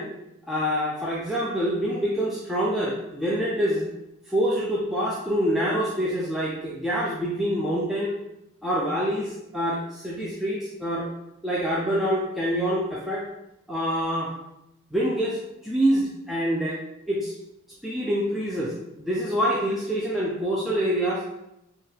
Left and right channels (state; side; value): normal; both; correlation 0.51